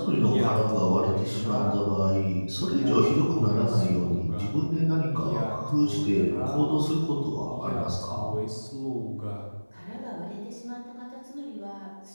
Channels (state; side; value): inverted; both; correlation -1.00